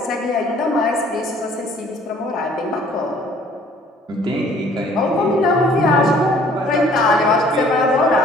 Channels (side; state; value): both; normal; correlation 0.56